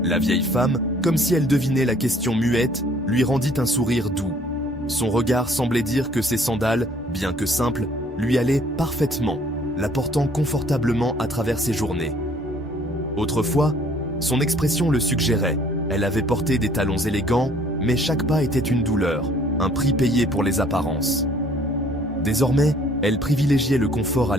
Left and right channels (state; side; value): normal; both; correlation 0.58